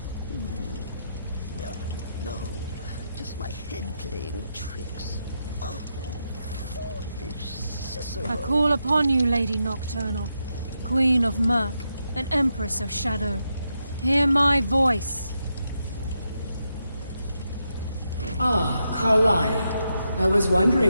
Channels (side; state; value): both; inverted; correlation -0.84